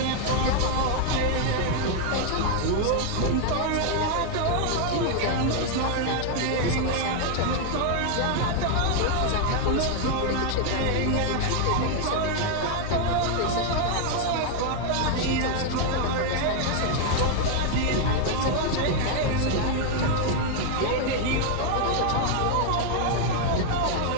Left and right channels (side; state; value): both; different; correlation 0.00